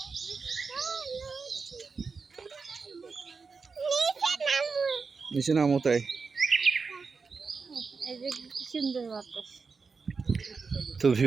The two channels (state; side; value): quieter; left; 4.9 dB